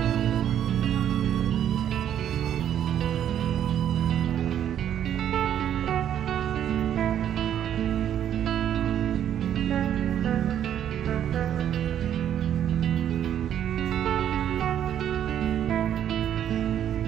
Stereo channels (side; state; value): left; quieter; 10.1 dB